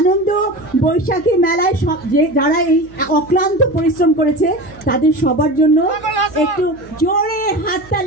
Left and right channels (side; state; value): right; noise; hum, 26 dB below the sound